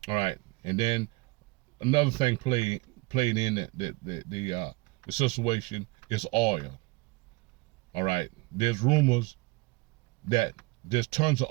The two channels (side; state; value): left; quieter; 24.6 dB